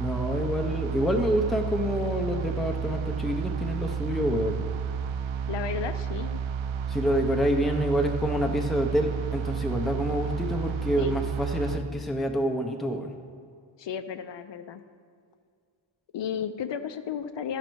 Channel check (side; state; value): both; normal; correlation 0.62